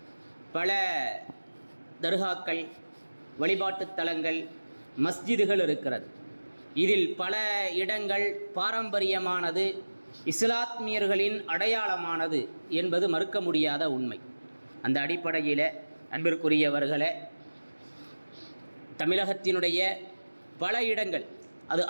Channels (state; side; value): inverted; both; correlation -1.00